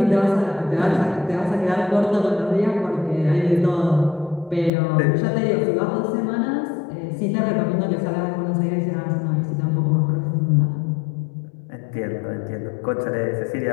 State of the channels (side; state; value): right; drops out; at 4.7 s